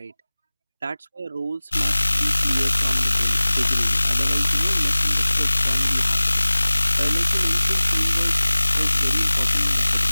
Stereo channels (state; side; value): inverted; both; correlation -0.99